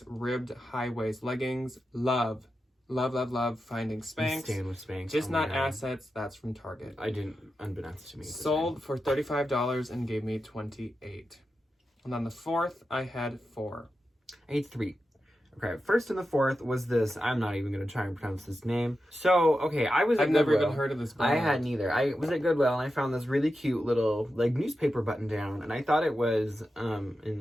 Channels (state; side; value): normal; both; correlation 0.90